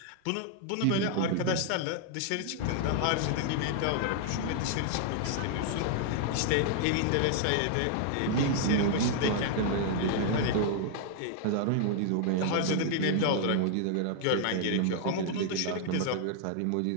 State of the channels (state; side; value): different; both; correlation 0.00